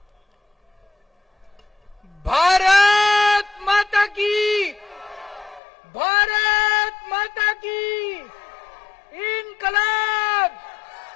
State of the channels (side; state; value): right; drops out; at 5.6 s